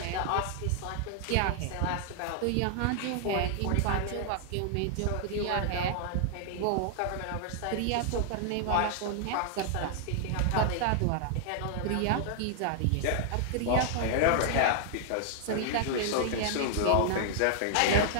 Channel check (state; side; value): different; both; correlation -0.01